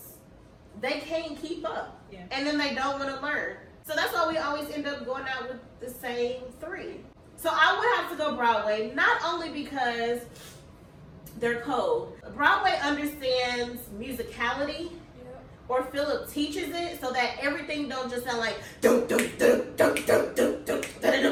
they can't keep up. Yeah. And then they don't want to learn. So that's why we always end up going out with the same 3. So I would have to go Broadway, not only because they're cold. Broadway understands musicality, or Philip teaches it, so that everything don't just sound like dum dum dum dum dum dum dum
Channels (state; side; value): identical; both; correlation 1.00